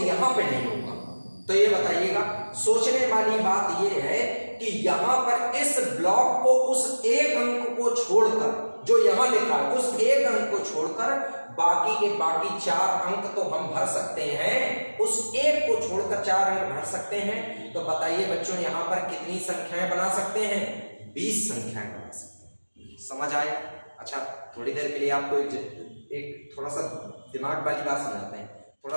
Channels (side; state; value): both; inverted; correlation -1.00